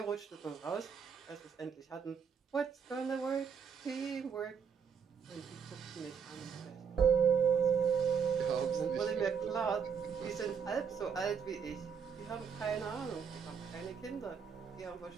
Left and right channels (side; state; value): left; quieter; 6.7 dB